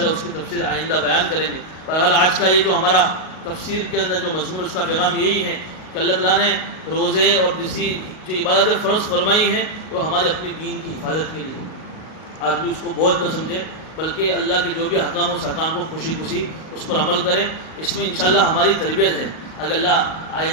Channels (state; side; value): late; right; 38 ms